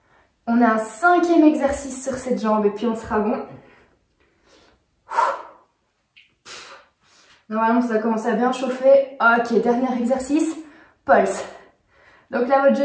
On a un cinquième exercice sur cette jambe et puis on sera bon. Normalement, ça va commencer à bien chauffer. Ok, dernier exercice, pulse. Donc là, votre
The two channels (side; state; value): both; identical; correlation 1.00